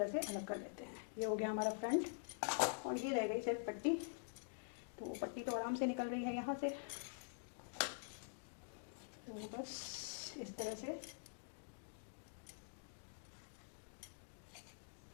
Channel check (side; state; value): right; silent; digital silence